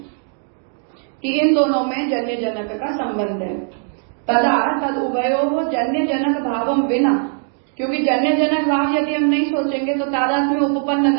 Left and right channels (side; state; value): left; silent; 58 dB below the other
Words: कि इन दोनों में जन्य जनक का संबंध है। तदा तद उभयोः जन्य जनक भावम विना, क्योंकि जन्य जनक भाव यदि हम नहीं सोचेंगे तो तादात्म्य उपपन्न